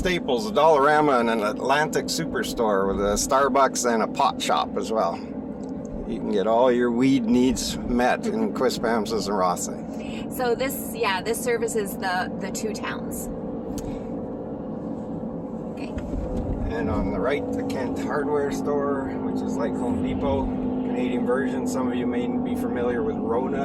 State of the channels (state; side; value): identical; both; correlation 1.00